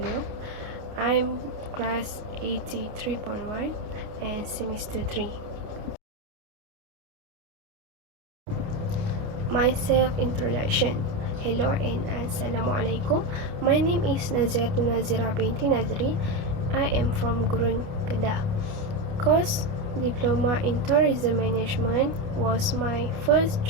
I'm class 83.1 and semester 3. My self-introduction. Hello and Assalamualaikum. My name is Nazira binti Nazri. I am from Gurun, Kedah. Course Diploma in Tourism Management was my first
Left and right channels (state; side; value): late; left; 29 ms